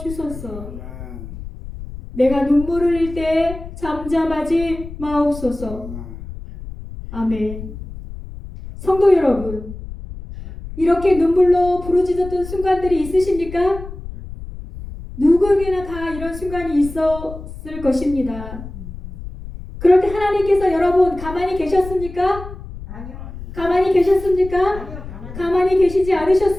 주소서. 내가 눈물을 흘릴 때 잠잠하지 마옵소서. 아멘. 성도 여러분, 이렇게 눈물로 부르짖었던 순간들이 있으십니까? 누구에게나 다 이런 순간이 있었을 것입니다. 그럴 때 하나님께서 여러분 가만히 계셨습니까? 아니요. 가만히 계셨습니까? 아니요. 가만히 계시지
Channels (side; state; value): left; noise; rumble, 12 dB below the sound